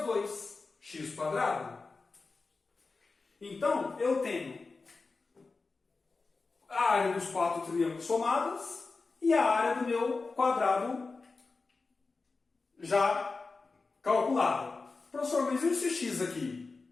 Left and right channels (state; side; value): quieter; right; 4.0 dB